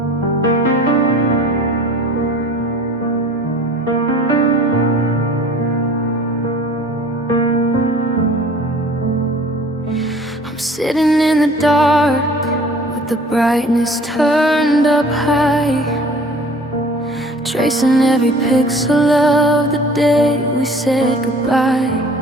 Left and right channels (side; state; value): both; normal; correlation 0.47